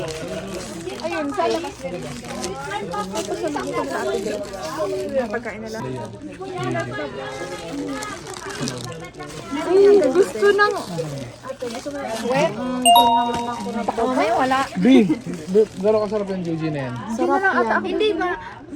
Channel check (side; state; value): both; identical; correlation 1.00